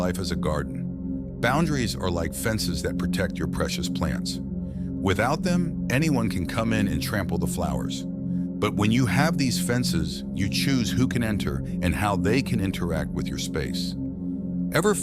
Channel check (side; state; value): both; identical; correlation 1.00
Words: as a garden. Boundaries are like fences that protect your precious plants. Without them, anyone can come in and trample the flowers. But when you have these fences, you choose who can enter and how they can interact with your space. Ever